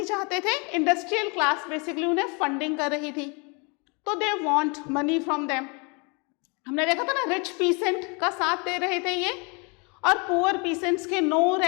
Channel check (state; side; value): quieter; right; 32.1 dB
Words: चाहते थे? इंडस्ट्रियल क्लास बेसिकली उन्हें फंडिंग कर रही थी, तो they want money from them. हमने देखा था ना, रिच पीसेंट का साथ दे रहे थे ये, और पुअर पीसेंट्स के नो